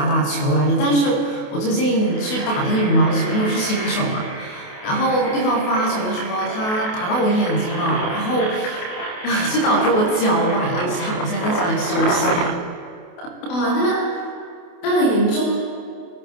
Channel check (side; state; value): right; late; 28 ms